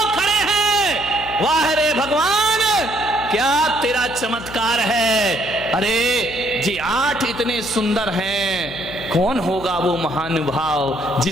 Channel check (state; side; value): noise; left; hum, 14 dB below the sound